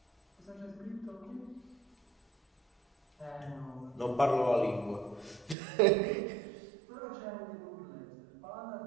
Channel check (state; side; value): drops out; left; at 5.6 s